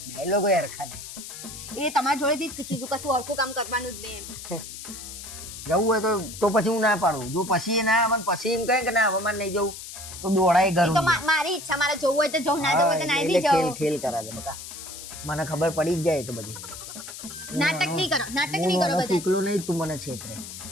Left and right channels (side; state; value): left; noise; hiss, 11 dB below the sound